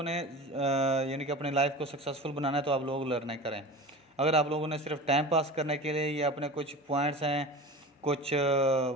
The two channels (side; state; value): both; normal; correlation 0.33